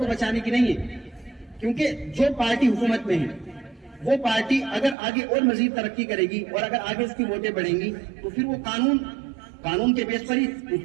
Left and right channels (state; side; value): drops out; left; at 5.0 s